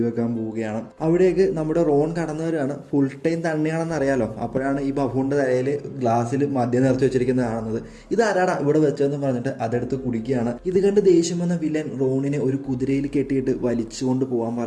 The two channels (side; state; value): both; identical; correlation 1.00